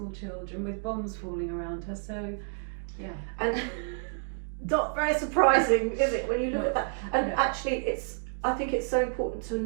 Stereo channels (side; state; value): left; silent; 58 dB below the other